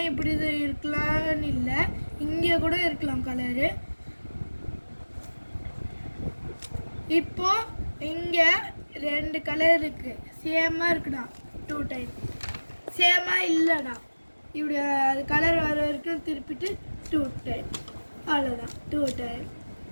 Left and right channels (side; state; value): both; inverted; correlation -1.00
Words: இப்படி இது இருக்கலாம்னு இல்லை, இங்கே கூட இருக்கலாம் கலரு. இப்போ இங்கே 2 கலர் இருக்குது, சேமாக இருக்குடா. 2 டைம் சேமாக இல்லைடா. இப்படி அது கலர் வர வரைக்கும் திருப்பிட்டு 2 டைம், அவ்வளோதான். 2 டைம்.